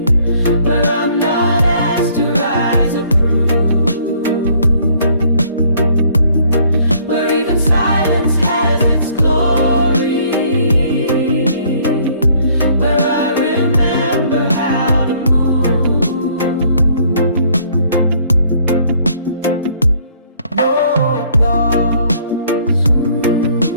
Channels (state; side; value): inverted; both; correlation -0.61